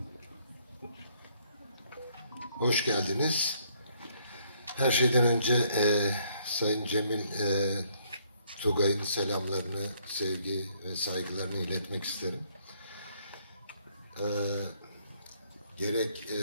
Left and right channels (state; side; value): inverted; both; correlation -0.67